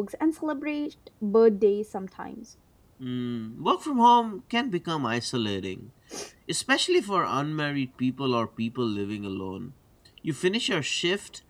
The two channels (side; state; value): both; identical; correlation 1.00